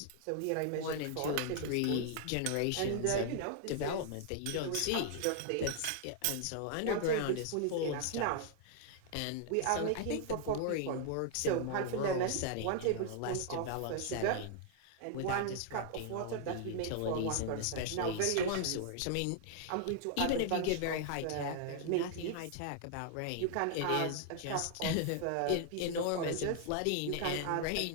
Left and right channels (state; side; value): different; both; correlation 0.00